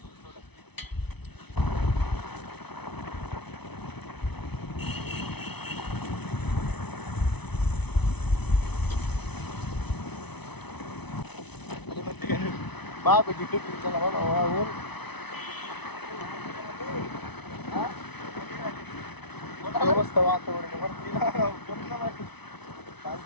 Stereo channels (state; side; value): late; right; 0.99 ms